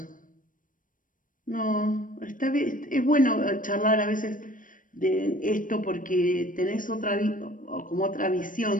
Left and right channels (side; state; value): right; late; 0.39 ms